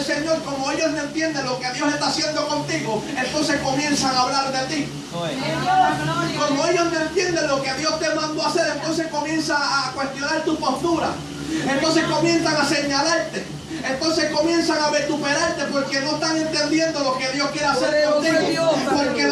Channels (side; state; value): both; identical; correlation 1.00